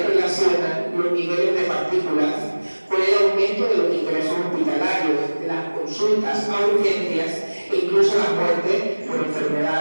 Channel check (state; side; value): inverted; both; correlation -1.00